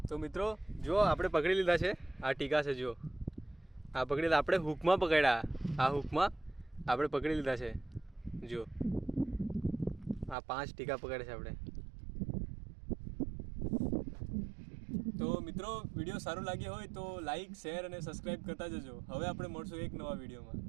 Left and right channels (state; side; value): drops out; left; at 10.4 s